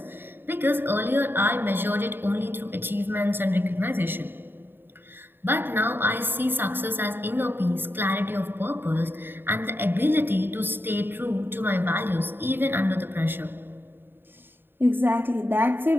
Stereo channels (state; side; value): late; left; 0.099 ms